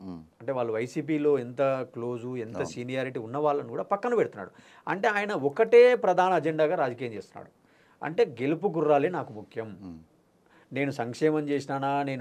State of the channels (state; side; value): identical; both; correlation 1.00